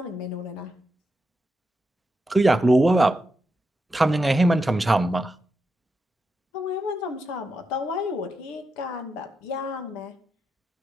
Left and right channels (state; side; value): normal; both; correlation 0.86